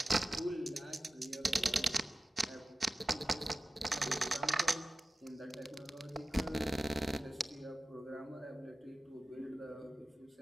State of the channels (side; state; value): both; normal; correlation 0.95